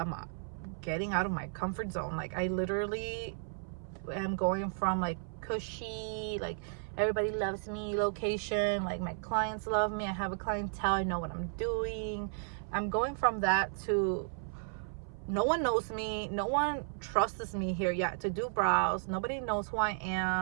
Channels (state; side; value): silent; left; 55 dB below the other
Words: getting out of my comfort zone. Like I literally am going from like cushy, like everybody loves me location, like my clients love me, I have a clientele, I know what I'm doing. I'm going from that to no one knows me, no one trusts me here yet to do brows. Nobody knows who I